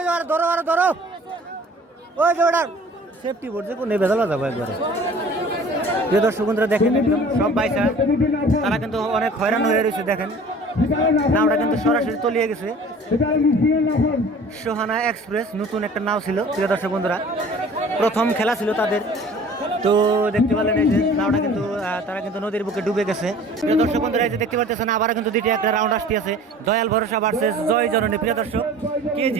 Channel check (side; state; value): both; normal; correlation 0.47